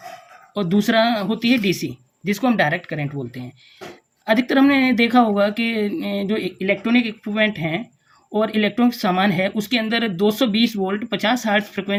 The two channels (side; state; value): both; identical; correlation 1.00